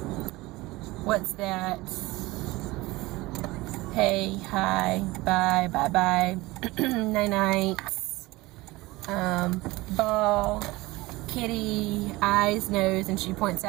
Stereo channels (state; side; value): quieter; left; 20.5 dB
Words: what's that? Hey, hi, bye, bye-bye, night-night, ball, kitty, eyes, nose, and she points